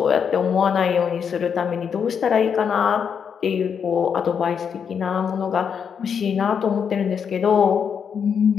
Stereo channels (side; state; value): right; quieter; 7.1 dB